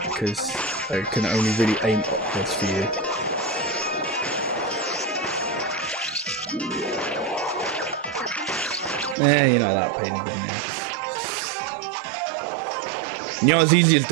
because I can only really aim upwards for you. You're not that pain in the ass. You're not as easy as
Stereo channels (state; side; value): drops out; left; at 9.2 s